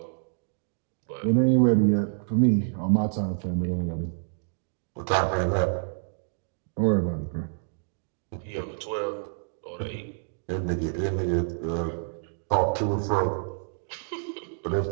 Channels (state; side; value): silent; left; digital silence